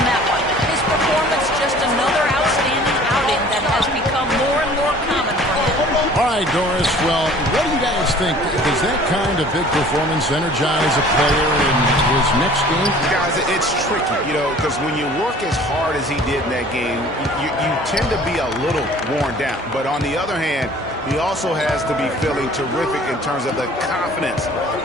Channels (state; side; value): normal; both; correlation 0.49